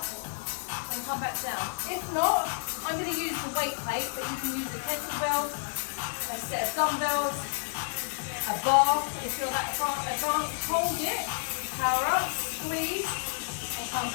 and come back down. If not, I'm going to use the weight plate, but you can use a kettlebell, a set of dumbbells, a bar if you're that advanced. Hold it, power up, squeeze, and come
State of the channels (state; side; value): silent; right; 56 dB below the other